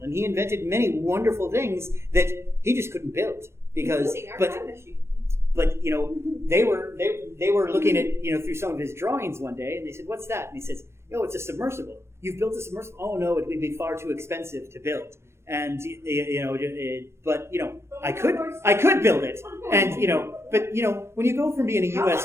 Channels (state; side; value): late; left; 0.13 ms